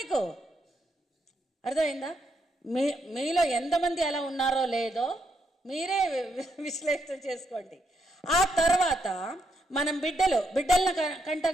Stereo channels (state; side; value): normal; both; correlation 0.78